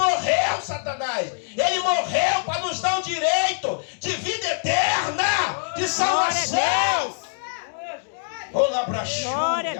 Satanás. Ele morreu para nos dar o direito de vida eterna, de salvação. Glória a Deus. Glória a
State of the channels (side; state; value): right; silent; digital silence